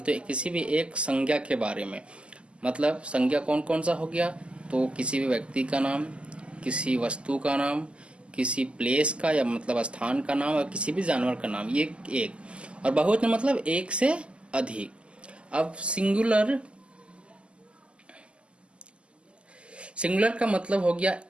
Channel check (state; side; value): late; left; 0.053 ms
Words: तो किसी भी एक संज्ञा के बारे में, मतलब संज्ञा कौन कौन सा हो गया, तो किसी भी व्यक्ति का नाम, किसी वस्तु का नाम, किसी प्लेस का या मतलब स्थान का नाम और किसी भी जानवर का नाम, ये एक। और बहुवचन मतलब एक से अधिक। अब सिंगुलर का मतलब हो गया